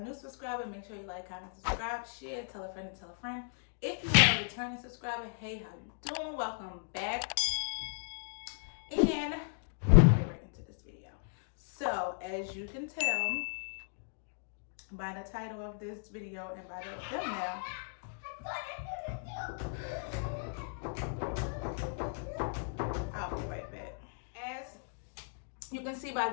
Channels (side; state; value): right; silent; digital silence